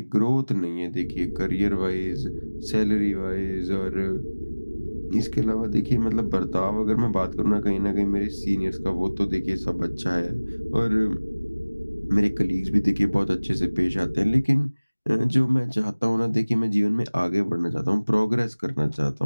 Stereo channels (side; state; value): both; inverted; correlation -1.00